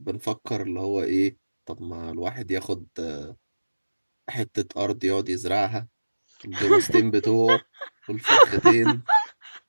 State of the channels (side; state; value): both; inverted; correlation -1.00